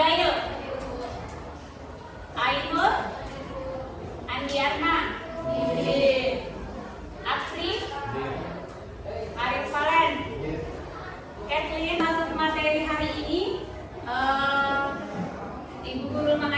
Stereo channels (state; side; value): identical; both; correlation 1.00